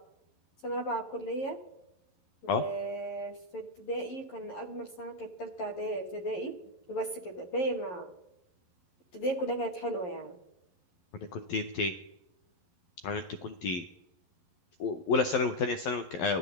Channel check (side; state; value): right; late; 11 ms